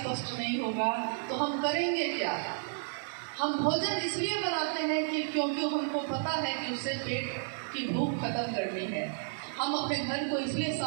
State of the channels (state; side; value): silent; left; 56 dB below the other